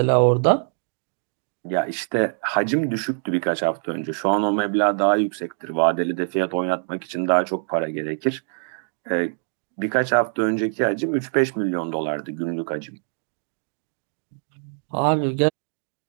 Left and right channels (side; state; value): left; silent; digital silence